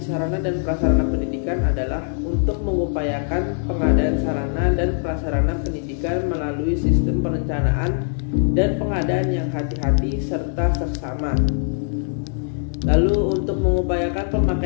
sarana dan prasarana pendidikan adalah untuk mengupayakan pengadaan sarana dan prasarana pendidikan melalui sistem perencanaan dan pengadaan yang hati-hati serta seksama. Lalu untuk mengupayakan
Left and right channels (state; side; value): silent; right; 63 dB below the other